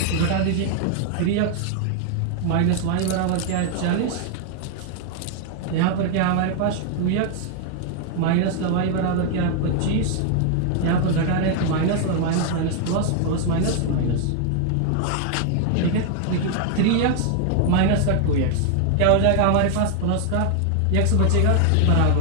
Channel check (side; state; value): both; different; correlation 0.00